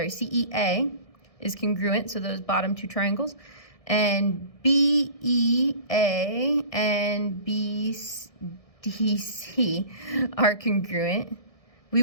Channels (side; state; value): right; late; 1.6 ms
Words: is congruent, so those bottom two triangles, and BEA and BDC are congruent, we